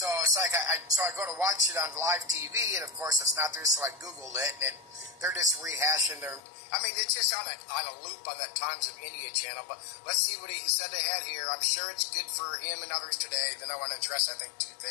it's like I go to watch it on live TV, and of course it's not there, so I Googled it, and they're just rehashing their. I mean, it's just on a loop on that Times of India channel. But let's see what he said they had here. I'm sure it's good for him and others today. Then I want to address, I think, two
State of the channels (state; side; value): drops out; right; at 6.4 s